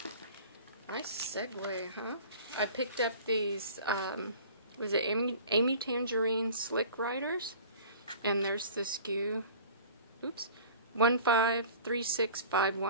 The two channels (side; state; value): both; inverted; correlation -0.44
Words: nice segue, huh? I picked up these, was it Amy Tangerine Slick Riders? And there's the SKU, oops,